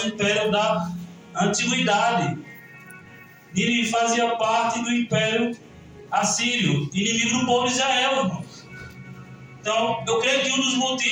impérios da antiguidade. Nínive fazia parte do Império Assírio, inimigo do povo de Israel, irmãos. Então, eu creio que um dos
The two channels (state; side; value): identical; both; correlation 1.00